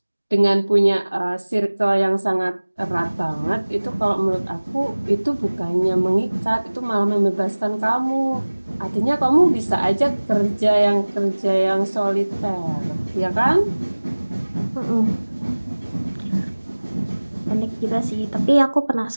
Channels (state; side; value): inverted; both; correlation -1.00